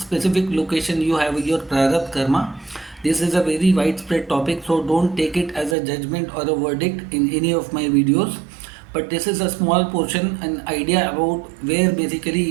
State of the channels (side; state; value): left; drops out; at 5.8 s